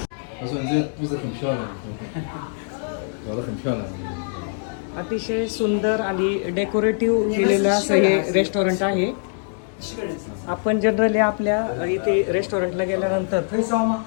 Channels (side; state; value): right; silent; digital silence